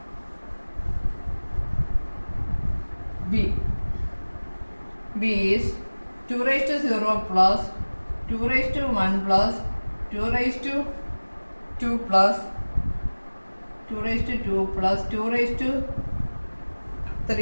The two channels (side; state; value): both; inverted; correlation -1.00